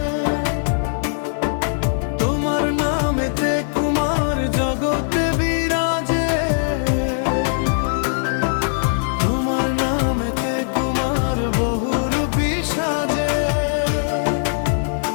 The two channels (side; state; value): right; silent; digital silence